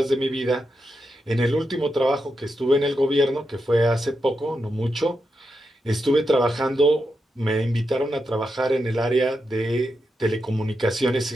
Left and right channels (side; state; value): both; normal; correlation 0.86